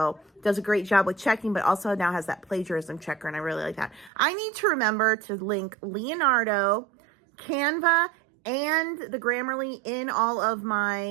Does a great job with checking, but also now has that plagiarism checker, and I really like that. I need to remember to link Leonardo, Canva, and the Grammarly in all of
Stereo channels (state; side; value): drops out; left; at 4.1 s